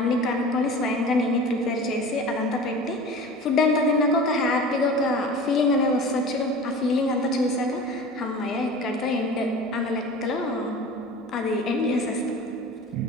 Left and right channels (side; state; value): both; normal; correlation 0.37